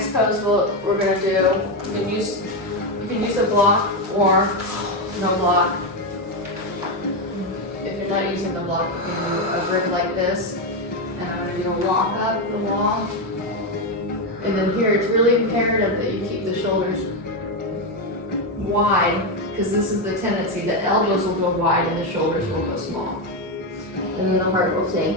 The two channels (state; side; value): normal; both; correlation 0.08